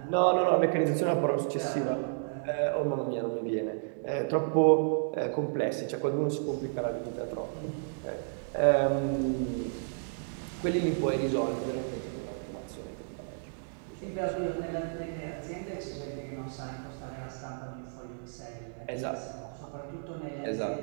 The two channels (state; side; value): silent; left; digital silence